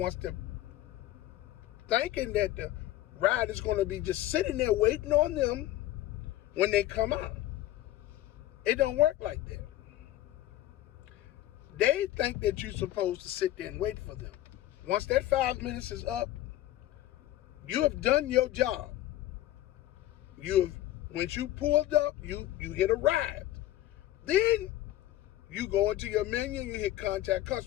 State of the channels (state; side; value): quieter; right; 14.4 dB